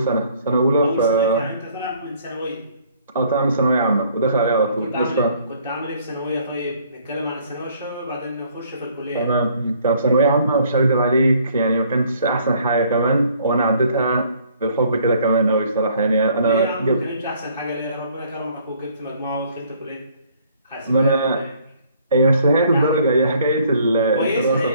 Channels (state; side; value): inverted; both; correlation -0.61